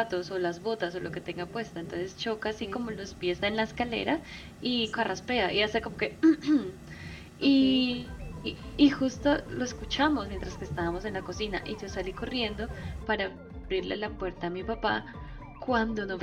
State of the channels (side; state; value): both; identical; correlation 1.00